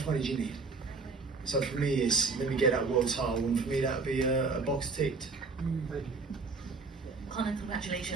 money do you need? So for me, it's let me get that world title, and for me that would be a box ticked. Conor,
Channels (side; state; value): left; quieter; 4.2 dB